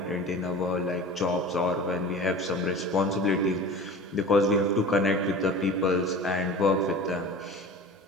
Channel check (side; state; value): both; normal; correlation 0.37